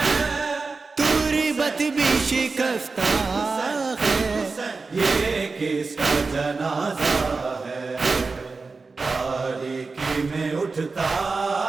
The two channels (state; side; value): quieter; left; 4.1 dB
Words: تربت بھی شکستہ ہے، یہ کس کا جنازہ ہے، تاریکی میں اٹھتا